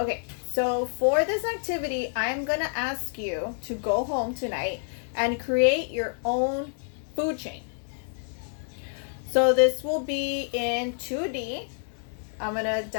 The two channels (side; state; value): right; silent; digital silence